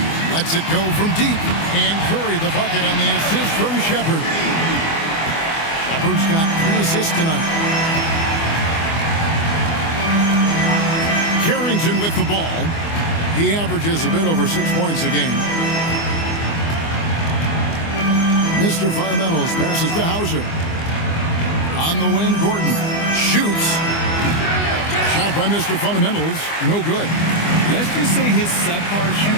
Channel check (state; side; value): late; right; 24 ms